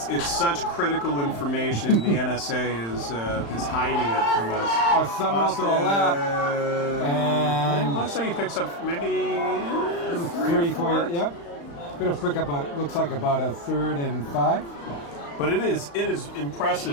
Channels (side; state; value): right; late; 35 ms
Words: such critical information. The NSA is hiding it from us. Summerall to the left. And looks like he picks up maybe 3, 4, yep. Gonna pick up looks like about a 3rd and 5. But it is